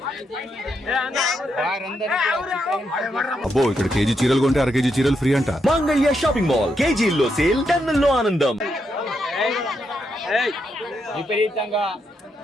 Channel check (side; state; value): both; normal; correlation 0.81